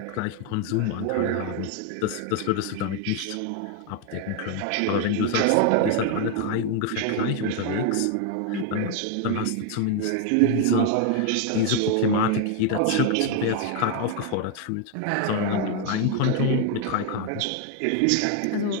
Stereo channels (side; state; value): both; different; correlation 0.01